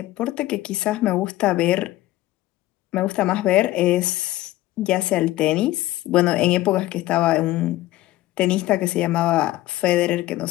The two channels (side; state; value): right; quieter; 16.2 dB